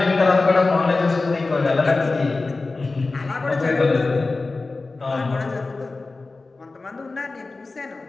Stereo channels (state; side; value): quieter; right; 3.6 dB